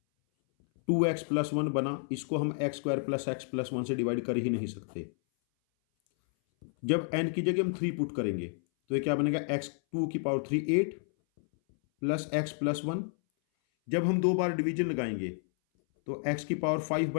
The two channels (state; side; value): silent; right; 57 dB below the other